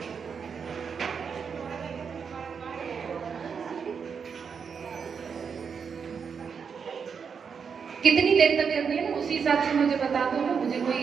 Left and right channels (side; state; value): left; quieter; 6.3 dB